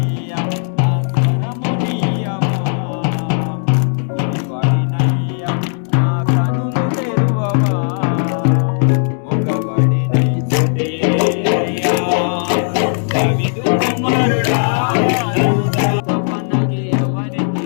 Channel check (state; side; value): silent; right; 66 dB below the other